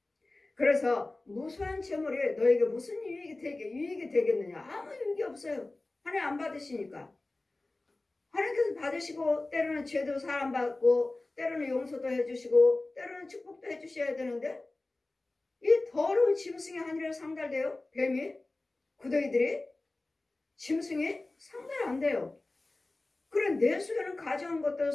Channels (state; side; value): quieter; right; 3.0 dB